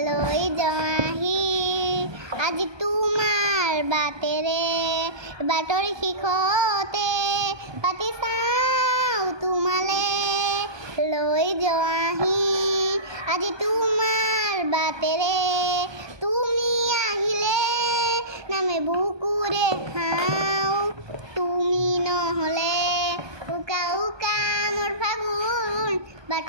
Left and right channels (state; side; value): late; left; 1.2 ms